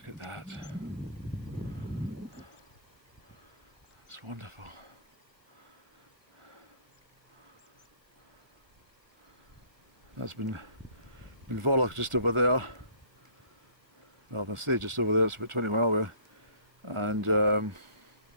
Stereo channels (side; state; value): left; late; 1.4 ms